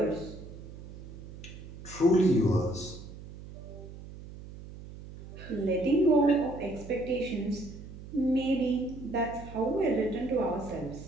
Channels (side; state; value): right; noise; hum, 14 dB below the sound